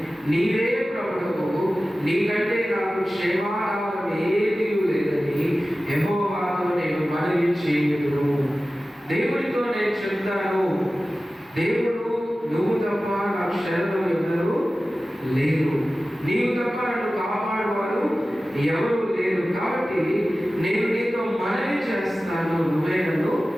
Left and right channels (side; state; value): both; normal; correlation 0.96